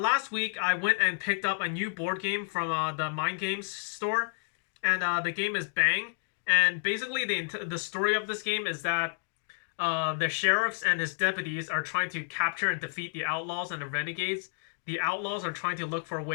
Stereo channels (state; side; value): silent; right; digital silence